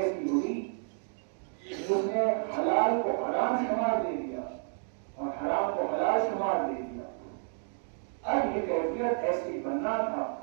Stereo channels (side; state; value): left; silent; 57 dB below the other